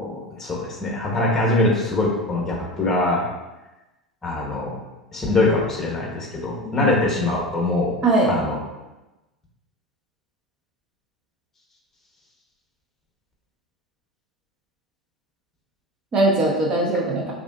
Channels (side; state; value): both; normal; correlation 0.30